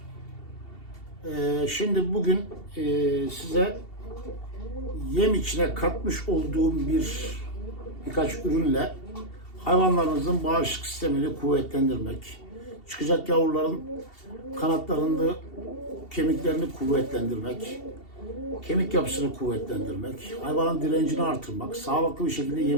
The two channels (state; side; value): late; right; 2.7 ms